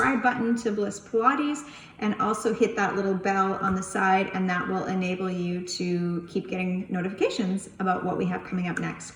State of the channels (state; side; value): identical; both; correlation 1.00